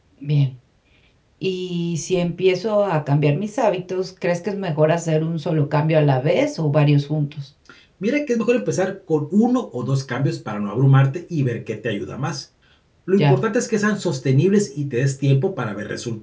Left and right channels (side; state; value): both; identical; correlation 1.00